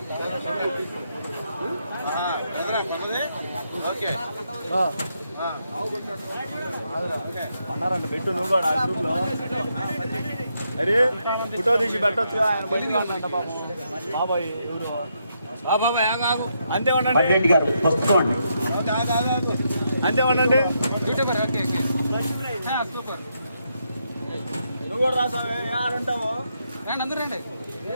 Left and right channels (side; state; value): both; inverted; correlation -0.79